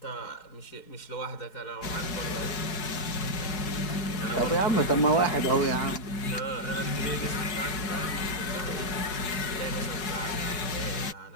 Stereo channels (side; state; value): right; late; 4.7 ms